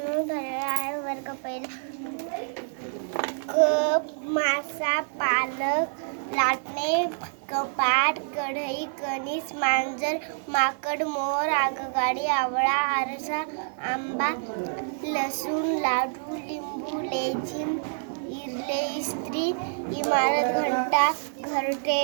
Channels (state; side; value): silent; left; 60 dB below the other